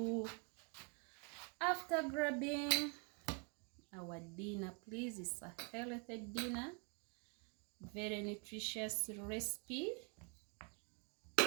after grabbing our dinner, please. It's a healthy dinner, very nutritious recipe.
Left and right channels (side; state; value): left; quieter; 36.4 dB